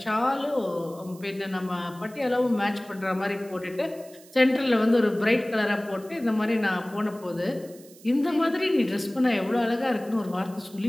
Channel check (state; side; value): noise; right; hiss, 23 dB below the sound